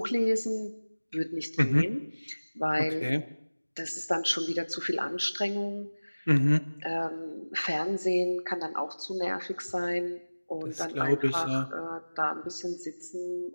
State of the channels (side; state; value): both; inverted; correlation -1.00